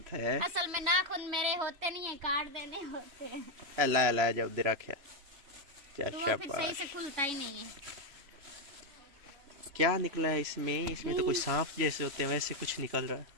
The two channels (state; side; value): late; left; 3.0 ms